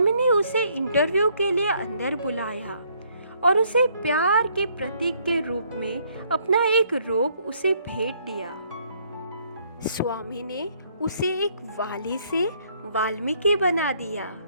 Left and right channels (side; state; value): both; inverted; correlation -0.67